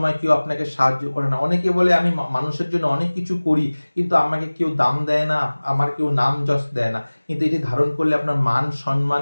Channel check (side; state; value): both; inverted; correlation -1.00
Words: কেউ আপনাকে সাহায্য করে না। অনেকে বলে আমি মানুষের জন্য অনেক কিছু করি কিন্তু আমাকে কেউ দাম দেয় না, আমার কেউ নাম যশ দেয় না। কিন্তু এটি ধারণ করলে আপনার মান সম্মান